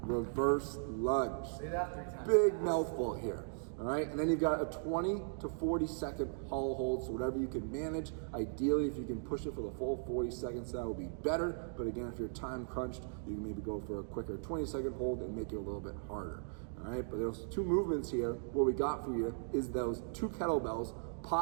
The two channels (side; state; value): left; silent; digital silence